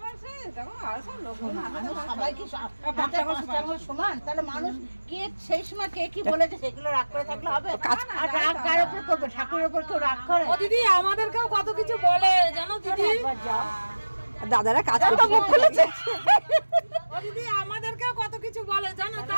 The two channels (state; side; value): inverted; both; correlation -1.00